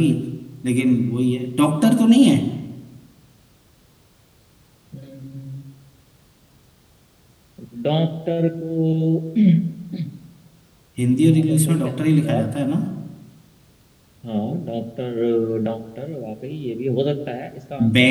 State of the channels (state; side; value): identical; both; correlation 1.00